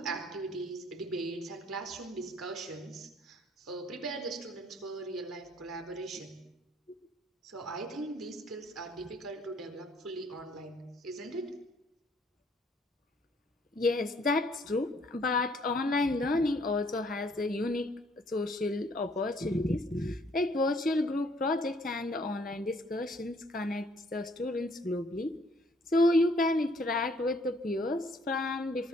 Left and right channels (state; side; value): normal; both; correlation 0.63